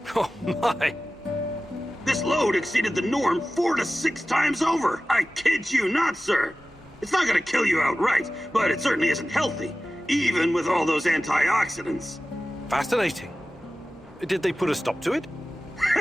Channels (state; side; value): normal; both; correlation 0.96